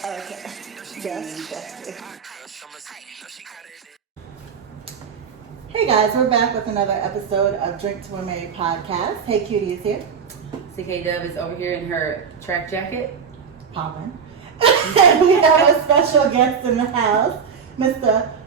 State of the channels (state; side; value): quieter; left; 6.5 dB